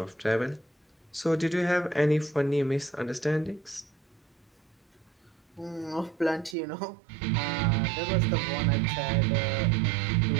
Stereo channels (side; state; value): left; drops out; at 6.6 s